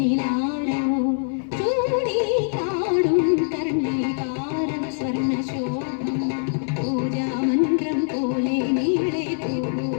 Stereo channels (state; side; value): silent; right; 63 dB below the other